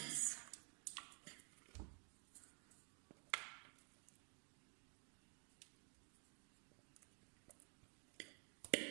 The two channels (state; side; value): quieter; left; 36.2 dB